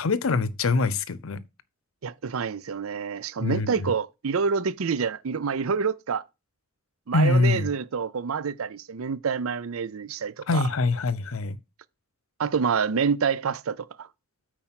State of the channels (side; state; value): both; normal; correlation 0.14